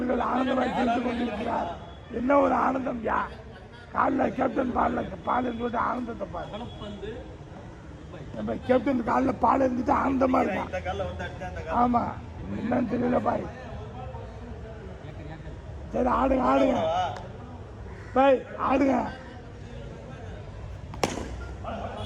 ஆனந்தமாய் செலுத்திக் கொண்டிருக்கிறார். என்ன ஒரு ஆனந்தம் யா காலில் கேப்டன் பால் இருந்துட்டு ஆனந்தத்தை பாரு. கலப்பந்து நம்ம கேப்டன் காலில் பால் இருந்துட்டு ஆனந்தமா இருக்கான். ஆமா என்னன்னு தெரியல பாய். சரி ஆடுங்க பாய் ஆடுங்க.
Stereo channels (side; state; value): both; identical; correlation 1.00